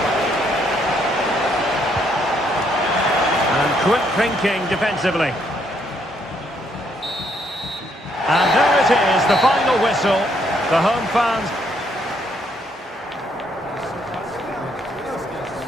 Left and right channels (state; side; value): normal; both; correlation 0.71